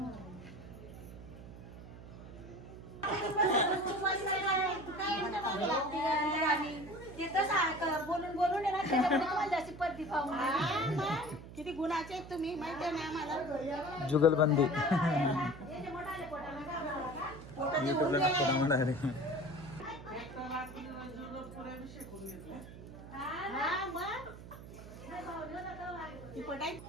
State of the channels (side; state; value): right; noise; hum, 14 dB below the sound